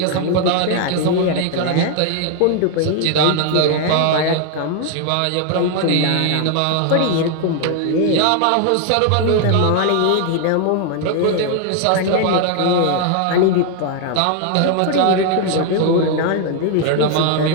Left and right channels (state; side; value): different; both; correlation 0.00